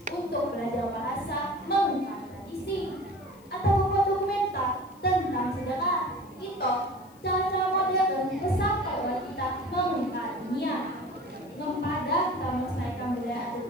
untuk belajar bahasa, mengungkap tradisi, atau membuat dokumenter tentang sejarah. Itu cara-cara modern sampai oleh kita mengungkap dunia. Kepada kita melestarikan budaya adat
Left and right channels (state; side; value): noise; left; hiss, 28 dB below the sound